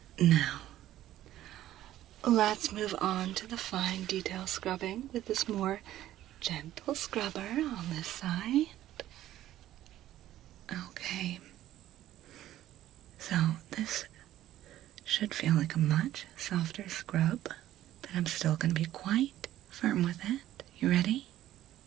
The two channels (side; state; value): left; quieter; 13.4 dB